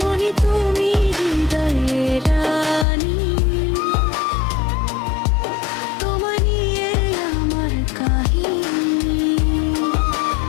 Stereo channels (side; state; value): right; drops out; at 2.9 s